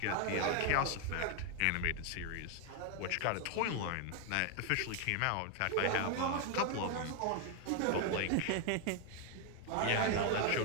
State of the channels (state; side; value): different; both; correlation 0.00